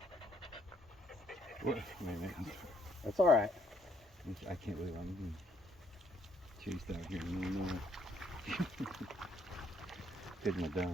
Wait a minute. That's all right. I can't believe I'm being chased out here in Illinois. Getting it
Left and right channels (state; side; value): normal; both; correlation 0.68